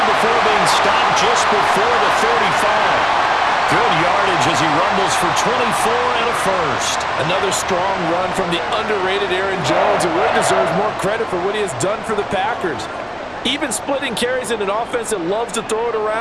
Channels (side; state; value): both; identical; correlation 1.00